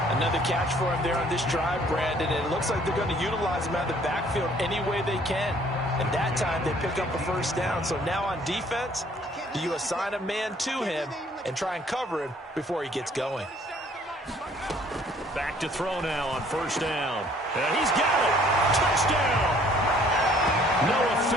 Another catch for him there on this drive, Brandon. And it looks like they're going to utilize him out of the backfield any way they can. And that time they pick up a first down. So now on defense, do you assign a man to him and try and cover him before he gets going? Back to throw now on first down. And he's got it. Touchdown. Noah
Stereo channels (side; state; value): both; normal; correlation 0.59